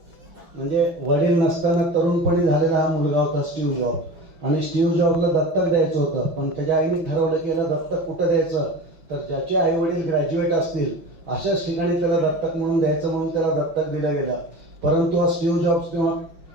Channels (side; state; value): left; late; 5.9 ms